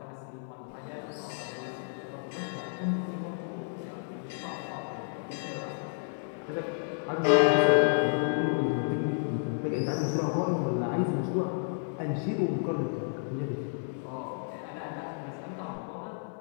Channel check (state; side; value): silent; right; digital silence